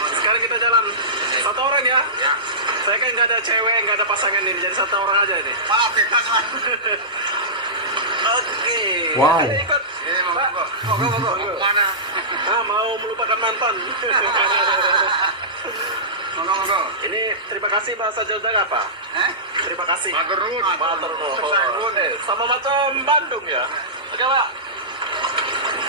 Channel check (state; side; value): normal; both; correlation -0.19